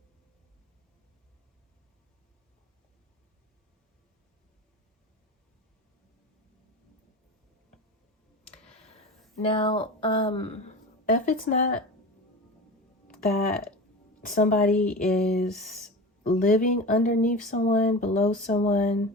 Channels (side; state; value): both; normal; correlation 0.30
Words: Now, if it's not that somebody is living underneath someone, below someone,